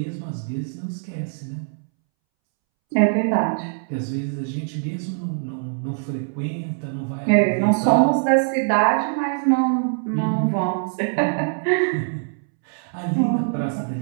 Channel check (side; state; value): left; silent; 64 dB below the other